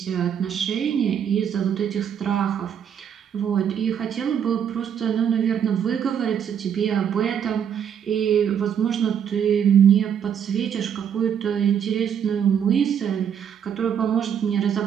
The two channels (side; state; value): left; quieter; 8.4 dB